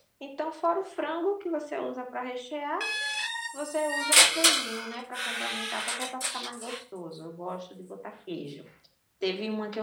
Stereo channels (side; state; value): both; identical; correlation 1.00